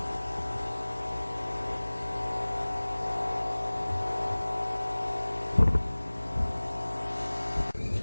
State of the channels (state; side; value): inverted; both; correlation -1.00